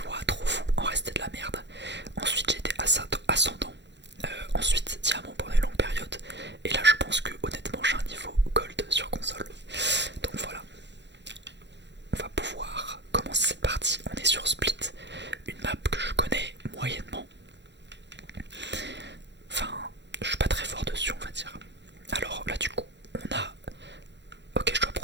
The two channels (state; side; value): late; left; 0.52 ms